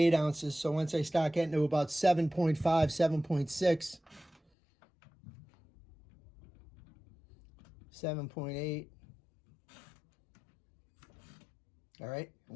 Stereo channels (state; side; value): drops out; right; at 4.4 s